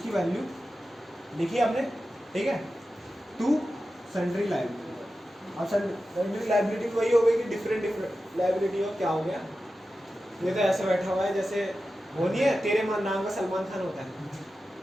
वैल्यू लिखी हमने, ठीक है, टू सन्ड्री लायबिलिटी। अब सन्ड्री लायबिलिटी वही हो गई कि डिफरेंट लायबिलिटी हो, क्या हो गया, ये तो ऐसे बैठा हुआ है जैसे वो नहीं है तेरे नाम का सलमान खान होता है,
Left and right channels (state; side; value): normal; both; correlation 0.92